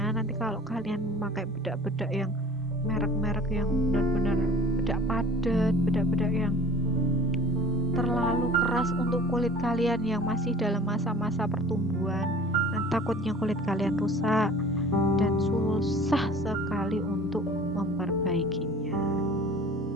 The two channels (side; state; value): both; normal; correlation 0.45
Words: kalau kalian memakai bedak-bedak yang merek-merek yang benar-benar bedak padat, bedak-bedak yang terlalu keras untuk kulit kalian yang masih dalam masa-masa pertumbuhan, dan takutnya kulit kalian rusak dan susah sekali untuk memperbaikinya.